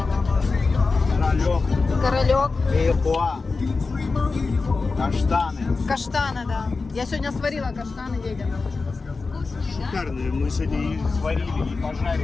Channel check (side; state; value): right; quieter; 4.1 dB